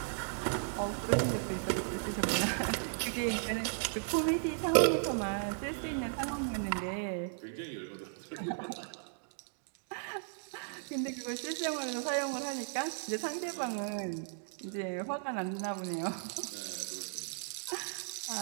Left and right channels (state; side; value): silent; left; digital silence